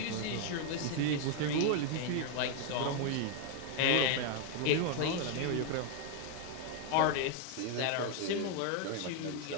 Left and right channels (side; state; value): both; different; correlation 0.01